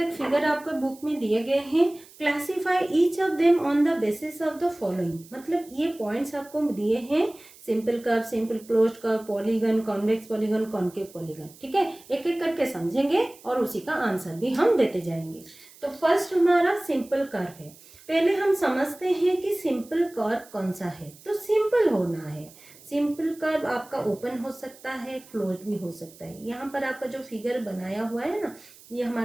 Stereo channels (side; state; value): right; noise; hiss, 23 dB below the sound